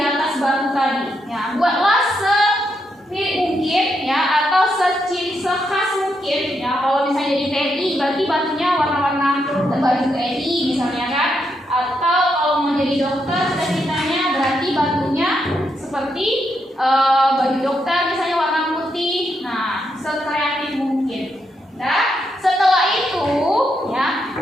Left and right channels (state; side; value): normal; both; correlation 0.80